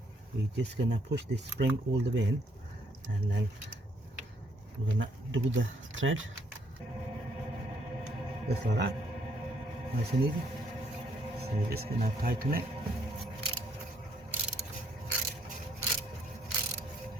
We're just gonna push this spring all the way in, and then we're gonna do the thread just like that, nice and easy. So we're just gonna tighten it.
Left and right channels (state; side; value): normal; both; correlation 0.68